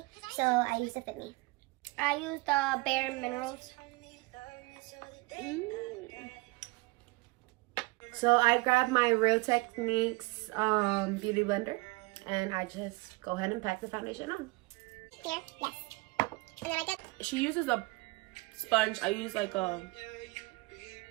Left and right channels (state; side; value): quieter; left; 24.8 dB